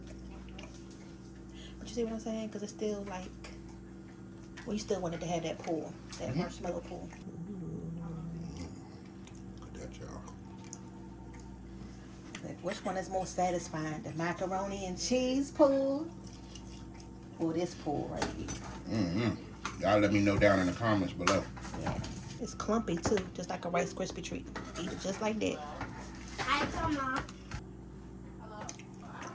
But you see what I'm saying? Because it's still like, well, you still wanted to have that pull, that marshmallow pull. Look at that, y'all. Like, which one is more satisfying, the macaroni and cheese pull or this pull right here? Y'all let me know down in the comments below. Yeah, it's clumpy too, just like a Rice Krispie treat. Eat it just like that. Hi, Mama.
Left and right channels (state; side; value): identical; both; correlation 1.00